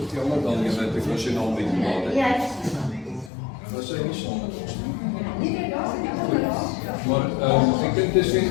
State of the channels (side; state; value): right; drops out; at 3.3 s